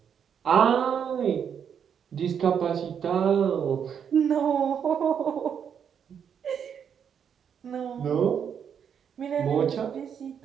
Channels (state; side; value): quieter; left; 7.8 dB